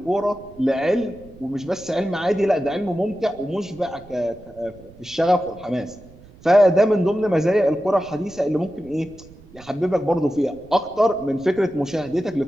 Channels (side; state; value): right; noise; rumble, 22 dB below the sound